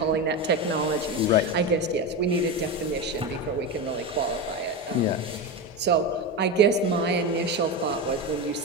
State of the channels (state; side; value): normal; both; correlation 0.17